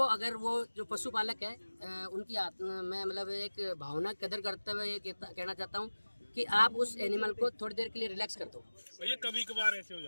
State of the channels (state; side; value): inverted; both; correlation -1.00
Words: अगर वो जो पशुपालक है उनकी मैं मतलब एक भावना कदर करते हुए ये कहना चाहता हूँ कि आप उस एनिमल को थोड़ी देर के लिए रिलैक्स कर दो। ये कभी कभार ऐसे हो